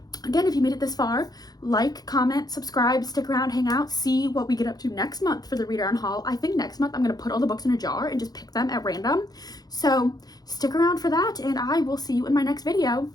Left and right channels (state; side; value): late; right; 0.19 ms